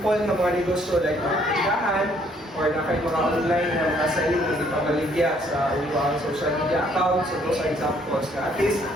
na mga negosyo like mga tindahan or na kayo mga online na mga selling hindi pa maligya sa inyong social media accounts. So those are examples na at least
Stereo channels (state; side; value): normal; both; correlation 0.65